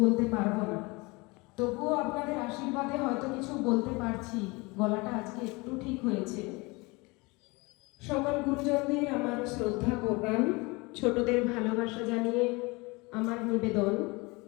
বলতে পারবো না, তবুও আপনাদের আশীর্বাদে হয়তো কিছু বলতে পারছি। গলাটা আজকে একটু ঠিক হয়েছে। সকল গুরুজনদের আমার শ্রদ্ধা প্রণাম, ছোটদের ভালোবাসা জানিয়ে আমার নিবেদন।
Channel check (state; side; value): quieter; right; 25.5 dB